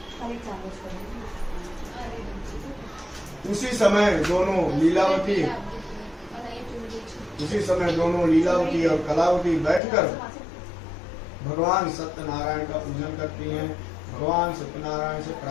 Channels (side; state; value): right; drops out; at 9.8 s